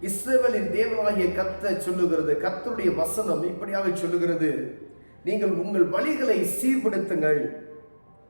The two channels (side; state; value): both; inverted; correlation -1.00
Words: இஸ்ரவேலின் தேவனாகிய கர்த்தர் சொல்லுகிறது, கர்த்தருடைய வசனம் இப்படியாக சொல்லுகிறது, நீங்கள் உங்கள் வழிகளை சீர்படுத்துங்கள்.